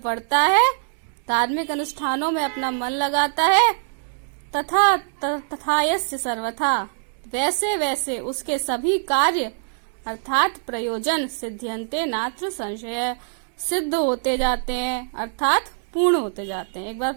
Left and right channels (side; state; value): left; silent; digital silence